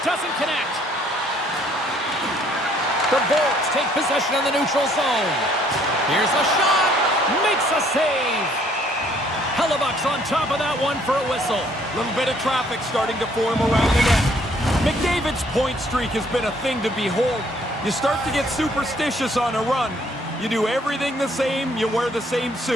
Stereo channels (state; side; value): normal; both; correlation 0.63